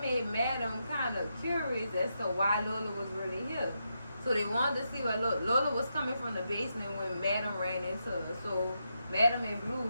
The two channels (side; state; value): both; inverted; correlation -0.84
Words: Madam kind of curious as to why Lola was really here. So they wanted to see why Lola was coming from the basement when Madam ran into her. So Madam and